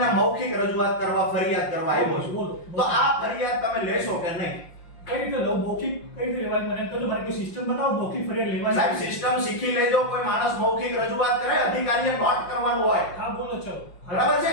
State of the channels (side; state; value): right; late; 5.7 ms